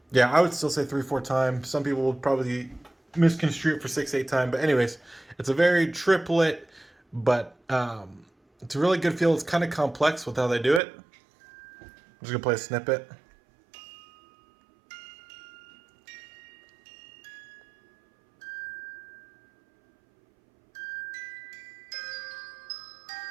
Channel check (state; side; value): drops out; left; at 10.8 s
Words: yeah, I would still say 3/4 time. Some people would probably misconstrue it for 6/8 time, but anyways, it's a very triplet, but it's a really good feel. It's kind of complex with how they do it. I'm just gonna play a snippet.